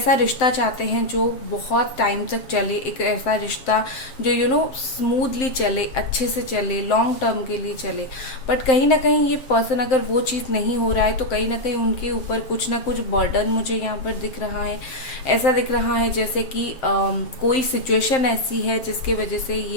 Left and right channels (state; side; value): late; right; 7.7 ms